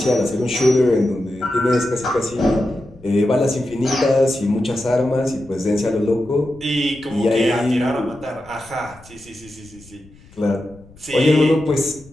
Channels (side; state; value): left; noise; rumble, 24 dB below the sound